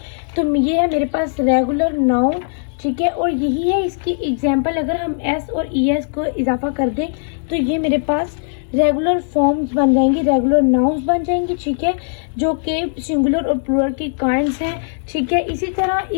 तो ये है मेरे पास रेगुलर नाउन। ठीक है, और यही है इसकी एग्जाम्पल, अगर हम एस और एस को इजाफा कर दें तो ये मेरे पास रेगुलर फॉर्म्स बन जाएंगी, रेगुलर नाउन्स बन जाएंगी। ठीक है, जो कि सिंगुलर और प्लूरल की काइंड्स हैं। ठीक है, इसी तरह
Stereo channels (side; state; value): right; silent; digital silence